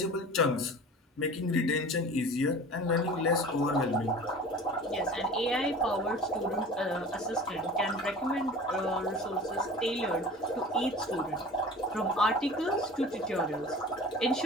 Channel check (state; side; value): normal; both; correlation 0.40